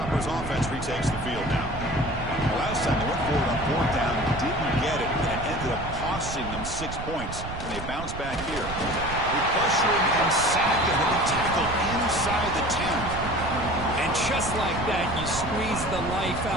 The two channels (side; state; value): right; noise; rumble, 8 dB below the sound